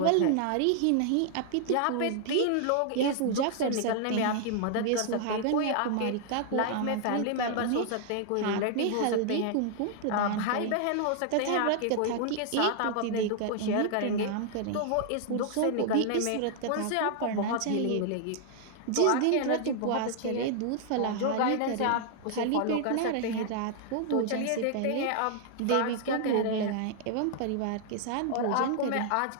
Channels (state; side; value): different; both; correlation 0.00